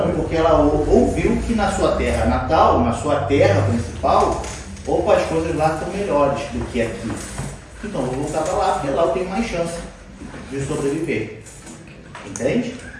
porque ela ouviu que na sua terra natal, na sua terra principal, opa, as coisas lá estão melhores do que aqui. Então vou voltar para lá, porque lá eu tenho mais chance de sobreviver. Entende?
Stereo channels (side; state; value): both; identical; correlation 1.00